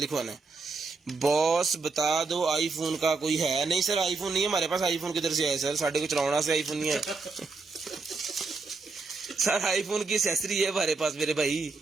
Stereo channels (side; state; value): left; quieter; 4.1 dB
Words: है। बॉस बता दो आईफोन का कोई है? नहीं सर आईफोन नहीं है हमारे पास, आईफोन किधर से आए सर, साढ़े को चलाना से आईफोन नहीं है। सर आईफोन की एक्सेसरी है हमारे पास मेरे भाई।